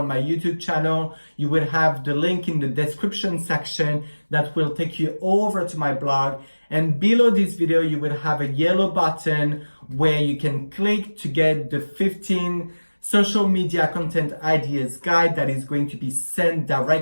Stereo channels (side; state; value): both; inverted; correlation -1.00